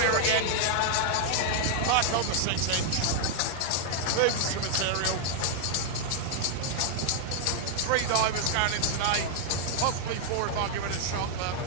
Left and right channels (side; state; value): both; different; correlation -0.01